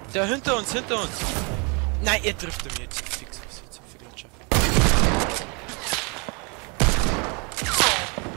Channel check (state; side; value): quieter; left; 32.1 dB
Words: Der hinter uns, hinter uns. Nein, er trifft mich jetzt. Fix, was jetzt für Gletscher.